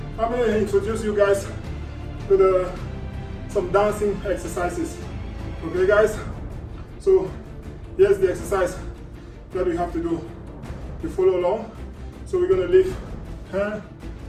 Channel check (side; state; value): both; identical; correlation 1.00